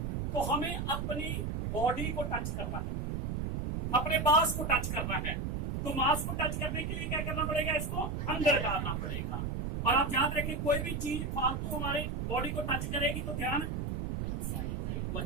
तो हमें अपनी बॉडी को टच करना है, अपने मांस को टच करना है। तो मांस को टच करने के लिए क्या करना पड़ेगा, इसको अंदर डालना पड़ेगा। और आप याद रखें, कोई भी चीज फालतू हमारे बॉडी को टच करेगी तो ध्यान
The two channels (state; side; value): noise; right; rumble, 1 dB below the sound